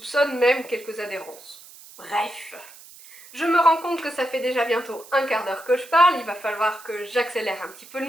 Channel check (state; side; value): noise; right; hiss, 20 dB below the sound